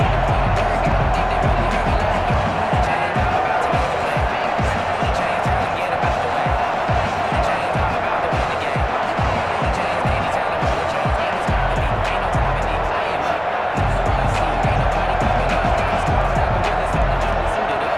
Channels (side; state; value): both; identical; correlation 1.00